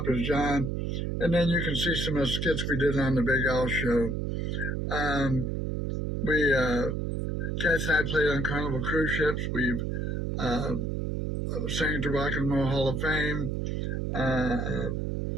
is John, and then you can see some of the skits we did on the Big Al Show. Kathy and I played on Carnival cruise ships. We've sang at the Rock and Roll Hall of Fame.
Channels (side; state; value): right; noise; hum, 1 dB below the sound